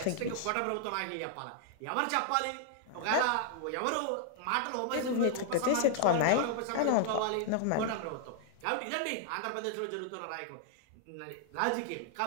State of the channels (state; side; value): different; both; correlation -0.01